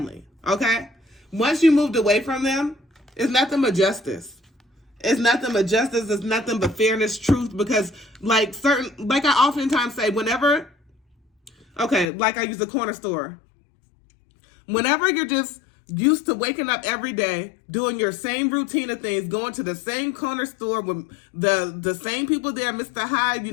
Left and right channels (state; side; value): drops out; right; at 12.1 s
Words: okay? Once you moved away from them, It's nothing but justice. It's nothing but justice. It's nothing but fairness, truth, because like I oftentimes say, whenever, okay, like I use the corner store. Whenever you're just used to waking up every day, doing your same routine of things, going to the same corner store with the same people there, Mr. Hyde, you